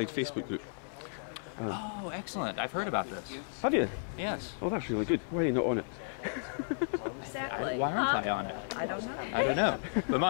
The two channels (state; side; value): silent; right; 55 dB below the other